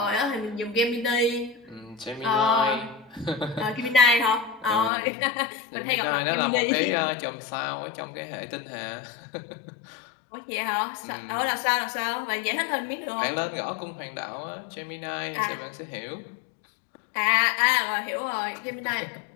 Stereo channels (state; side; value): drops out; right; at 4.9 s